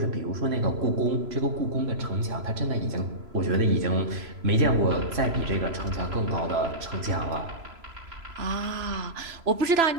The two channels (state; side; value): late; left; 3.0 ms